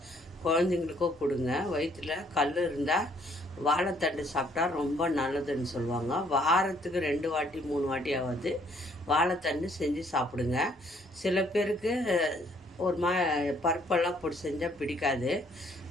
குழந்தைங்களுக்கும் கொடுங்க. வயிற்றில் கல் இருந்தால் வாழைத்தண்டு சாப்பிட்டா ரொம்ப நல்லதுன்னு சொல்லுவாங்க. வாரத்துக்கு 2 வாட்டி 3 வாட்டியாவது வாழைத்தண்டு செஞ்சு சாப்பிடுங்க. சில பேருக்கு ஒரு பருப்பெல்லாம் போட்டு செஞ்சால் பிடிக்காது.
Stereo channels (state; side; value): normal; both; correlation 0.65